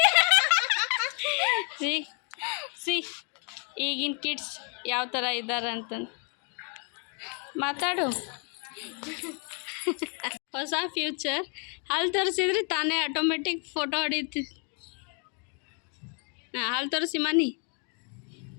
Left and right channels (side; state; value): right; quieter; 38.4 dB